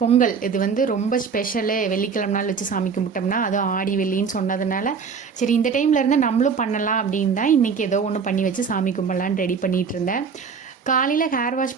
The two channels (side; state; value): left; quieter; 5.9 dB